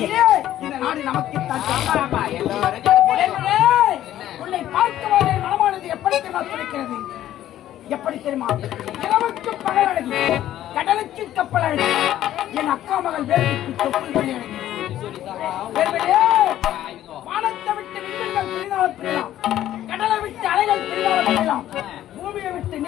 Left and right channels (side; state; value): right; quieter; 12.6 dB